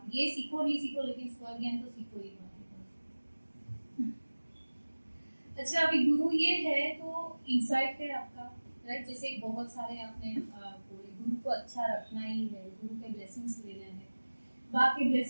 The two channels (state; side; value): inverted; both; correlation -1.00